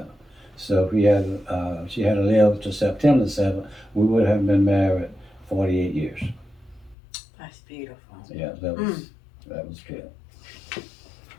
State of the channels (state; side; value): drops out; right; at 7.0 s